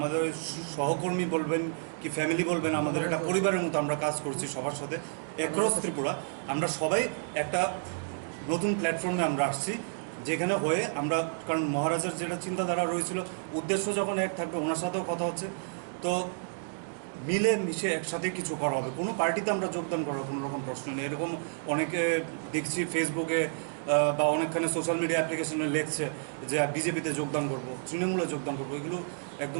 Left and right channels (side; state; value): left; silent; digital silence